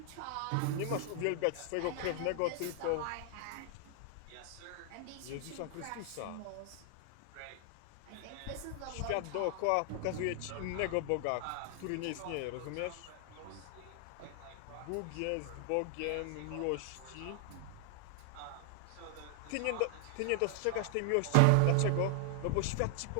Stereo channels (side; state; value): both; different; correlation 0.00